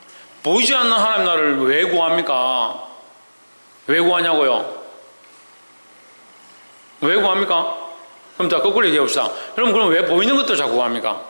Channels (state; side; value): inverted; both; correlation -1.00